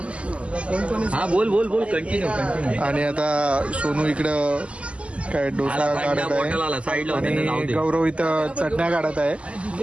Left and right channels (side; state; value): left; late; 0.058 ms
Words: हा बोल बोल बोल कंटिन्यू कंटिन्यू. आणि आता सोनू इकडं काय डोसा काढत आहे आणि गौरव इथं चटण्या काढत आहे.